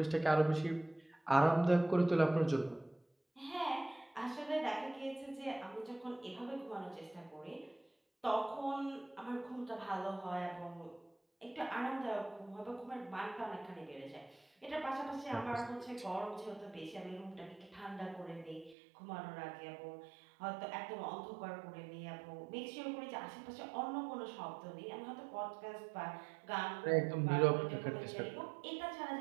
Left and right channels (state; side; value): drops out; left; at 18.8 s